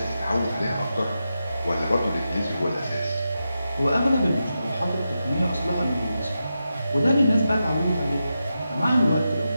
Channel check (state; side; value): inverted; both; correlation -0.89